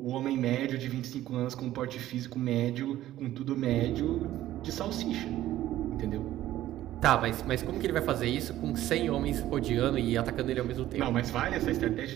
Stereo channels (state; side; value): quieter; left; 13.9 dB